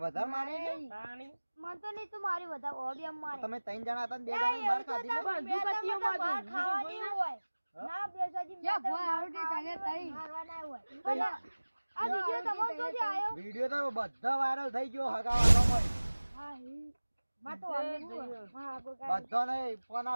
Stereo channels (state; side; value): inverted; both; correlation -1.00